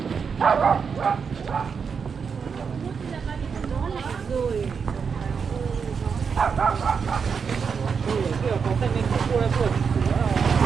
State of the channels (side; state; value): left; quieter; 6.1 dB